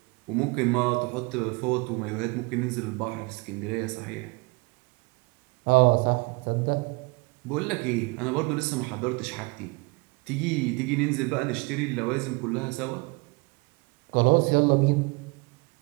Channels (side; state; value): left; quieter; 28.2 dB